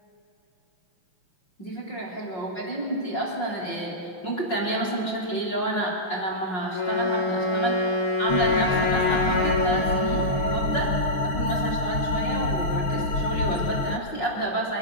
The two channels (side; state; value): right; late; 5.4 ms